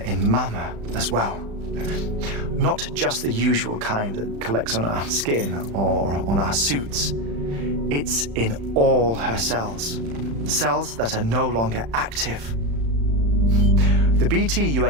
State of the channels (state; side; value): late; left; 35 ms